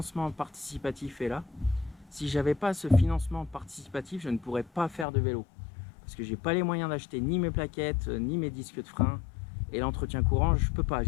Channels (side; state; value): right; drops out; at 5.1 s